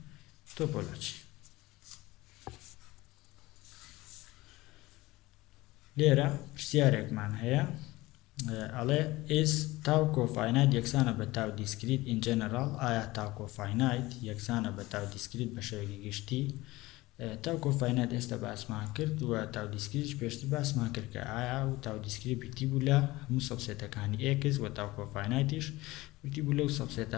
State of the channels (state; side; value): quieter; right; 19.6 dB